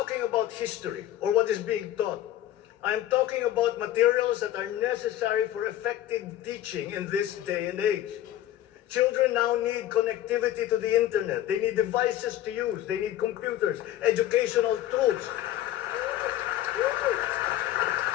about history or what is being taught. I am talking about materials that are necessary for effective teaching in this day and age. Children now need connectivity to the internet. They need devices to use. They need computers, educational tools.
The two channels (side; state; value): right; quieter; 13.0 dB